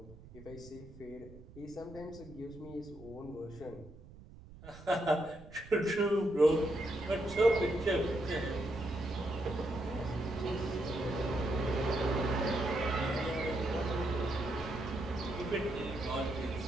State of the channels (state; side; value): noise; right; rumble, 18 dB below the sound